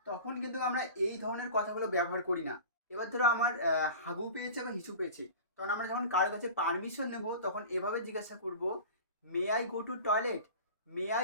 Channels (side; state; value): both; inverted; correlation -0.36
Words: তখন কিন্তু আমরা এই ধরনের কথাগুলো ব্যবহার করি না। এবার ধরো আমার হাগু পেয়েছে বা হিসু পেয়েছে, তখন আমরা যখন কারোর কাছে পারমিশন নেব, তখন এভাবে জিজ্ঞাসা করব, may I go to toilet, may